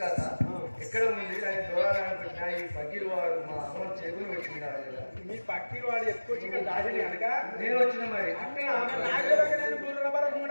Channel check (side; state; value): both; inverted; correlation -1.00